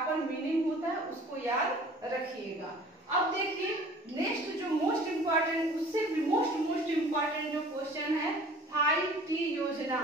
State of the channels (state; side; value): normal; both; correlation 0.47